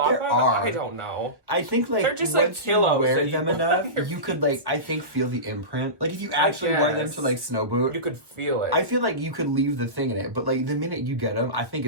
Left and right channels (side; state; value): left; late; 1.1 ms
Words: them? I don't know. I think like they're just once like pillows you wear them enough, you could like I think feel the imprint. Like if you actually wore them to like snow boot, you could feel it. I feel like you could leave the thing in it, but like the minute you get them, I think